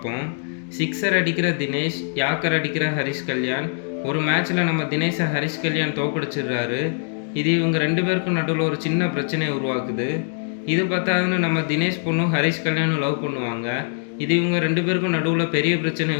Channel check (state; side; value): silent; right; 57 dB below the other